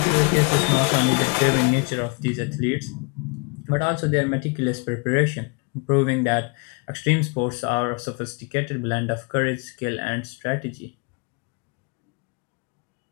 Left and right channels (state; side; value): quieter; right; 31.9 dB